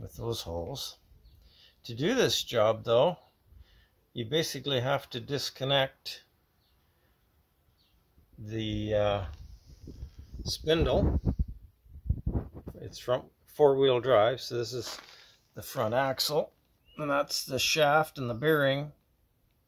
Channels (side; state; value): both; identical; correlation 1.00